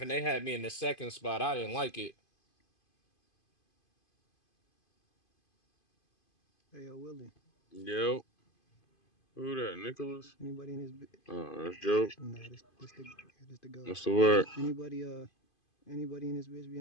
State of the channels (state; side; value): late; right; 2.5 ms